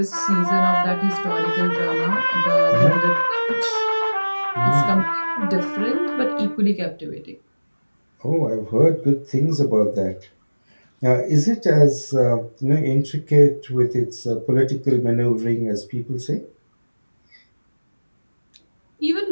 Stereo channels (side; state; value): both; inverted; correlation -1.00